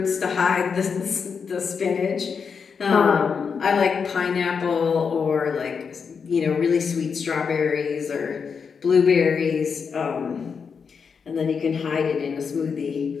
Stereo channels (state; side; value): quieter; right; 6.0 dB